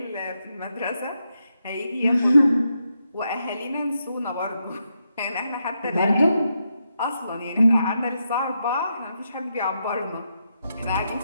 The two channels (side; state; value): both; inverted; correlation -0.83